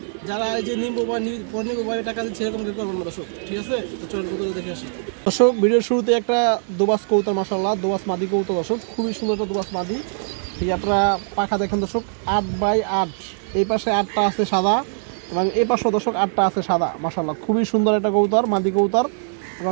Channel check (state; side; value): silent; left; digital silence